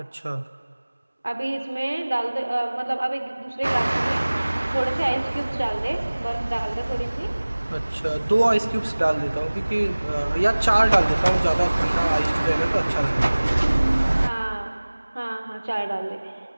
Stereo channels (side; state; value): both; inverted; correlation -1.00